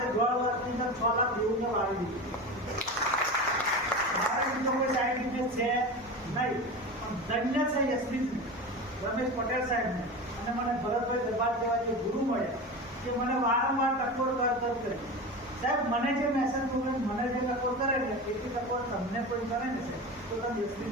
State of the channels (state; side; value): normal; both; correlation 0.27